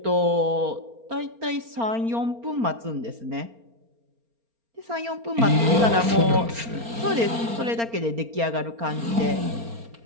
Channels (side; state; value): left; late; 4.3 ms